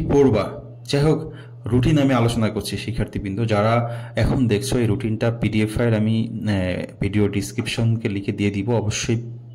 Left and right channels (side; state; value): both; identical; correlation 1.00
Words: পড়বা? যাই হোক, রুটিন আমি আলোচনা করছি শিক্ষার্থীবৃন্দ। যারা এখন দেখছো এই রুটিনটা পিডিএফ ফাইল আমি ভিডিও ডিসক্রিপশনকে লিখে দিয়ে দিব। অবশ্যই